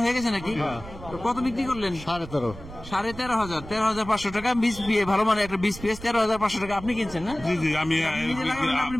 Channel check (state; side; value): noise; right; rumble, 14 dB below the sound